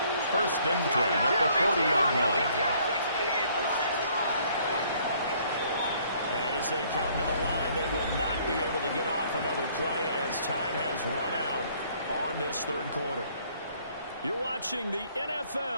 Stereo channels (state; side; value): inverted; both; correlation -0.62